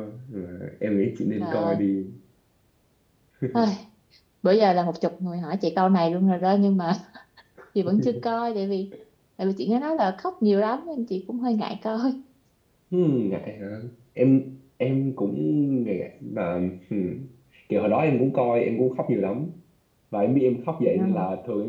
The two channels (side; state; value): both; identical; correlation 1.00